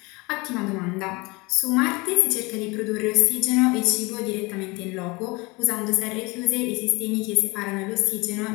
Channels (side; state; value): right; quieter; 25.4 dB